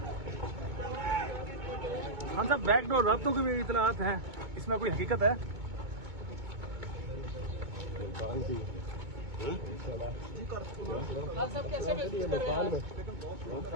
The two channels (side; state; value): left; late; 2.2 ms